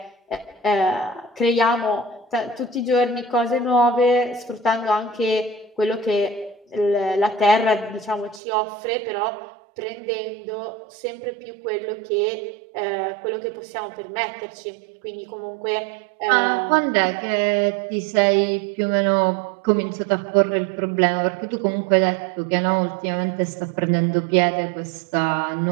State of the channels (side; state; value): left; drops out; at 8.4 s